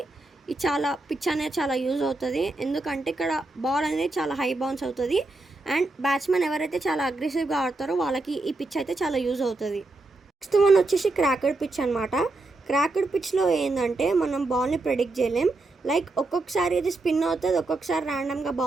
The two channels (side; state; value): left; quieter; 3.1 dB